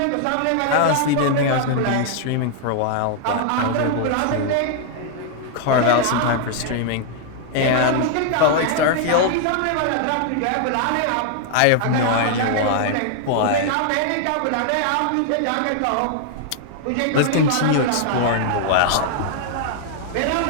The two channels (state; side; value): different; both; correlation -0.01